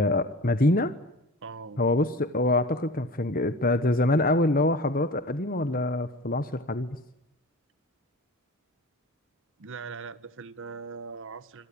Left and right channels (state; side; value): normal; both; correlation 0.37